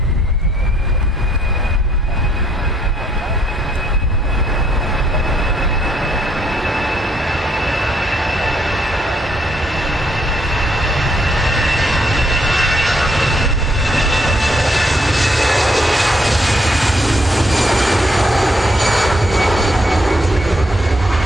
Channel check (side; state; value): both; normal; correlation 0.70